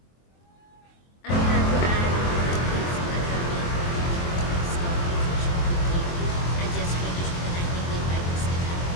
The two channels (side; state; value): right; late; 23 ms